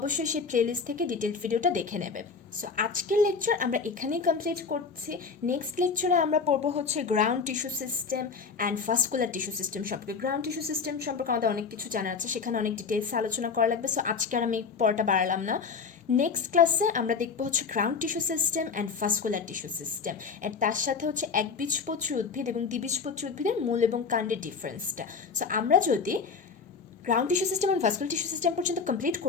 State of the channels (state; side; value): quieter; right; 5.3 dB